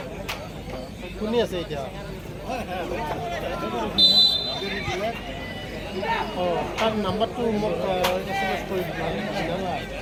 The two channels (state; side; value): identical; both; correlation 1.00